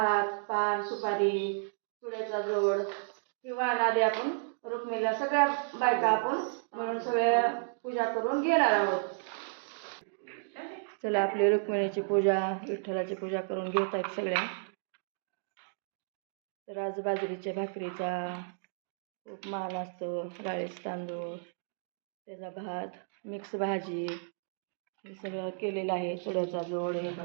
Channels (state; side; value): silent; left; digital silence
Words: पान, सुपारी, चुड्याचा जोड ही वाण आधी आपण रुक्मिणीला सगळ्या बायका आपण म्हणून सगळ्या पूजा करून घेणार आहोत. चला, आपली रुक्मिणीची पूजा, विठ्ठलाची पूजा करून घेत आहेत सगळ्या. तर आज बाजरीच्या भाकरीचा खूप मान असतो, राळेच तांदूळ, त्याचा भात, मिक्स भाजी हे सगळं केलेलं आहे. चुड्याचा जोड, हे